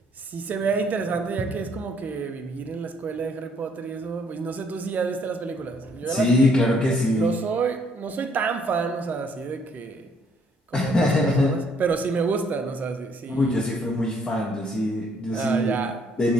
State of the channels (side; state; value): both; normal; correlation 0.66